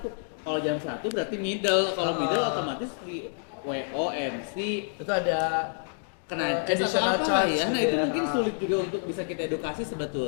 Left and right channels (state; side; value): silent; right; digital silence